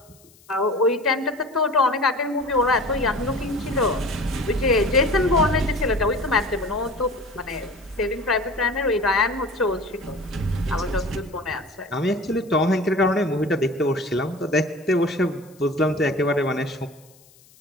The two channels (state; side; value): noise; left; hiss, 28 dB below the sound